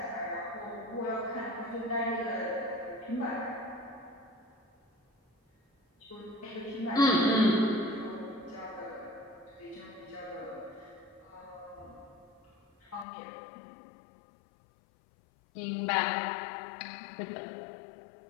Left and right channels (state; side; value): drops out; right; at 13.1 s